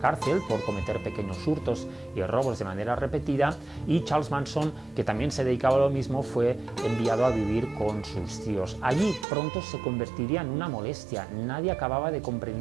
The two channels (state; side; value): drops out; left; at 9.2 s